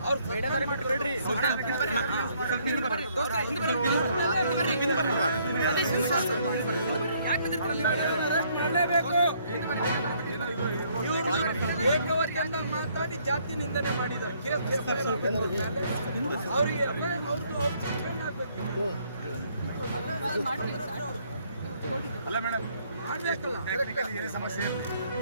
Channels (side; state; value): both; inverted; correlation -0.67